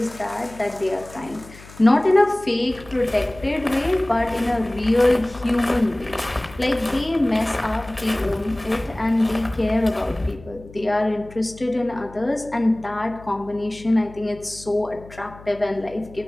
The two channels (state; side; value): noise; left; hum, 19 dB below the sound